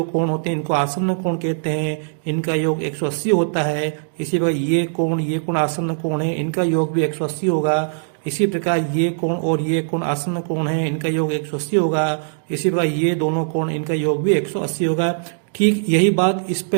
कोण होते हैं इनको आसन्न कोण कहते हैं। इनका योग 180 होता है। इसी प्रकार ये कोण आसन्न कोण है, इनका योग भी 180 होगा। इसी प्रकार ये कोण और ये कोण आसन्न कोण है, इनका योग 180 होगा। इसी प्रकार ये दोनों कोण, इनका योग भी 180 होगा। ठीक यही बात इस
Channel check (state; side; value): silent; left; digital silence